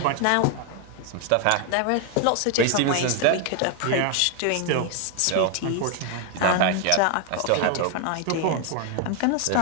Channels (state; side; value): different; both; correlation 0.01